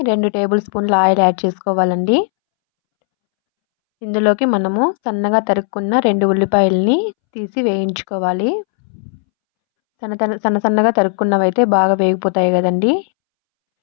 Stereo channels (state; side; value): silent; right; 67 dB below the other